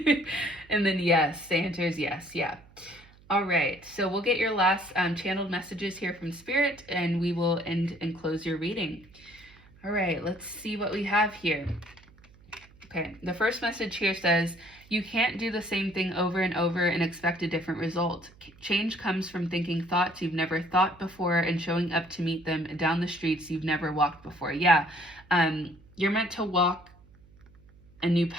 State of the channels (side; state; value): right; noise; hum, 26 dB below the sound